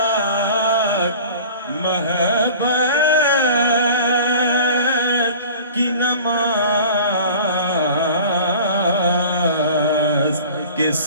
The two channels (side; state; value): both; inverted; correlation -0.42